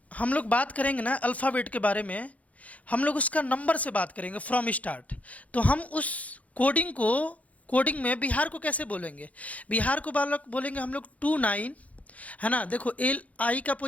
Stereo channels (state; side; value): late; right; 0.068 ms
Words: हम लोग बात करेंगे ना अल्फ़ाबेट के बारे में, हम लोग उसका नंबर से बात करेंगे फ्रॉम स्टार्ट। तो हम उस कोडिंग में बिहार को कैसे बोलेंगे, बिहार को बालक बोलेंगे हम लोग 29, है ना। देखो एल आई का